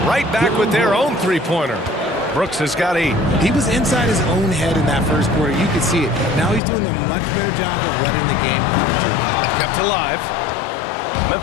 right back with their own 3-pointer. Brooks has got 8. He was inside his own head in that first quarter. You could see it. Now he's doing a much better job of letting the game come to him. Kept alive.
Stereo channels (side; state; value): right; drops out; at 6.6 s